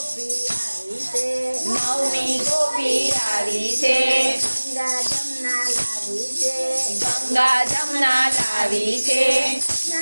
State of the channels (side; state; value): both; inverted; correlation -1.00